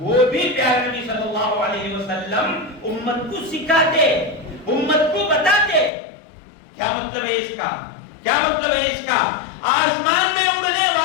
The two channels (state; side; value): drops out; right; at 5.9 s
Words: بھی پیارے نبی صلی اللہ علیہ وسلم امت کو سکھاتے، امت کو بتاتے۔ کیا مطلب ہے اس کا؟ کیا مطلب ہے اس کا؟ آسمان میں اڑنے